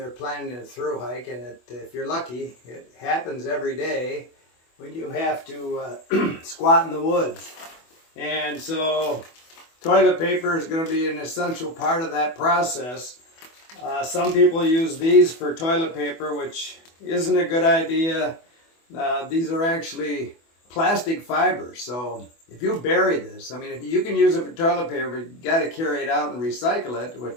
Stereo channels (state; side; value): late; right; 24 ms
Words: planning a through hike, and if you're lucky, it happens every day when you have to squat in the woods. And so toilet paper is going to be an essential part of that process. Some people use these for toilet paper, which isn't a good idea. These are actually plastic fibers, so if you bury this, I mean, if you can use it for toilet paper, you got to carry it out and recycle it,